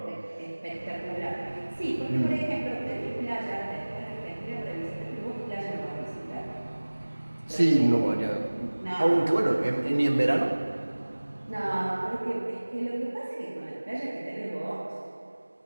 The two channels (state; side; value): inverted; both; correlation -1.00